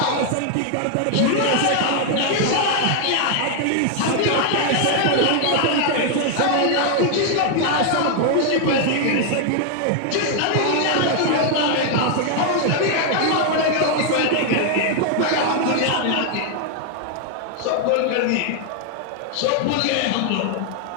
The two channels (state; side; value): different; both; correlation 0.00